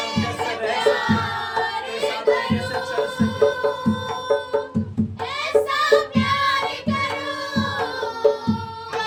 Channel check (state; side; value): identical; both; correlation 1.00